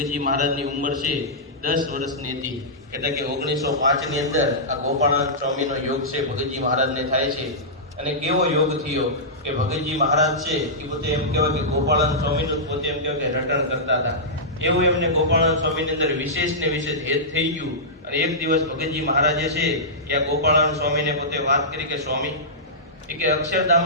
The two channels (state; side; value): normal; both; correlation -0.15